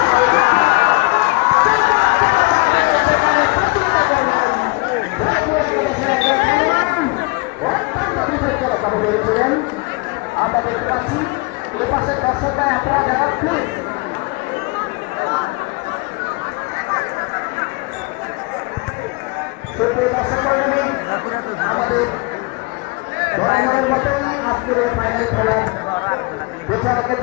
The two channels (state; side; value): quieter; right; 26.7 dB